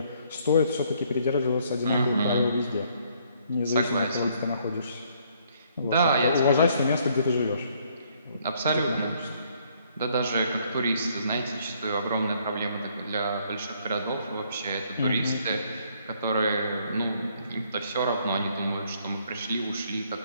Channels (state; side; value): inverted; both; correlation -0.66